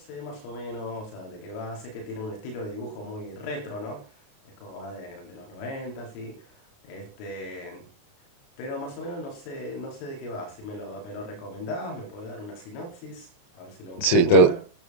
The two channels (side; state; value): right; late; 28 ms